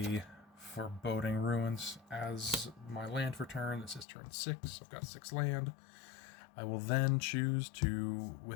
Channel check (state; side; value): drops out; right; at 4.0 s